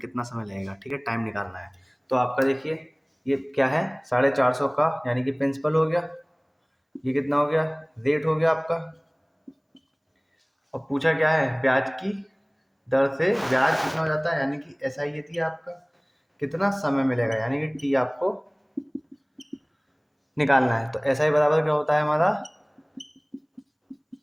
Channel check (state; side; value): identical; both; correlation 1.00